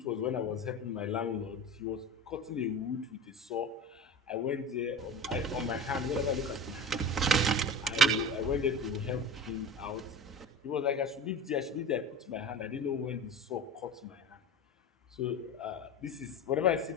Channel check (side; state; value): both; normal; correlation 0.31